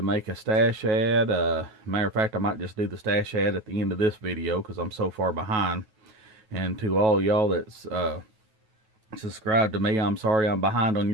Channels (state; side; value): late; left; 9.2 ms